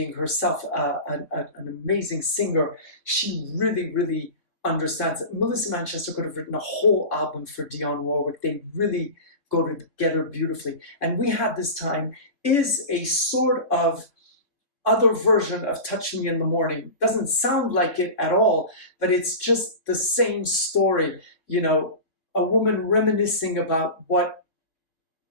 herself an amazing singer. She really, really understands it. Melissa Manchester could have written a whole album for Dionne Warwick. They really go together beautifully. And We Had This Time is a sort of other version of Touch Me in the Morning. Doesn't sound like it at all, but it's just the same story. You know, a woman reminiscing about what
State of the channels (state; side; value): late; right; 3.6 ms